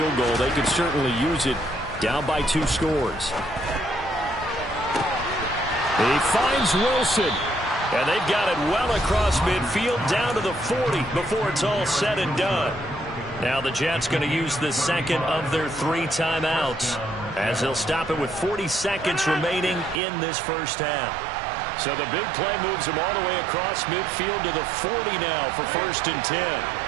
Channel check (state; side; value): drops out; left; at 20.0 s